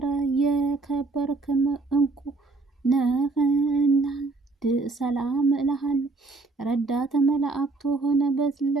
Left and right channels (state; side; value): quieter; left; 3.5 dB